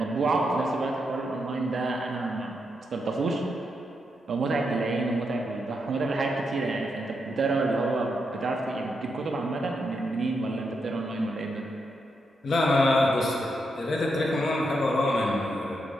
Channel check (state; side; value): normal; both; correlation 0.83